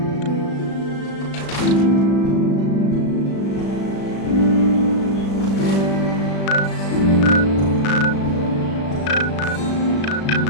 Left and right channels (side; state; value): right; late; 36 ms